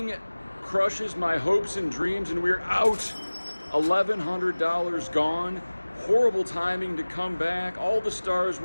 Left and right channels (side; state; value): both; inverted; correlation -1.00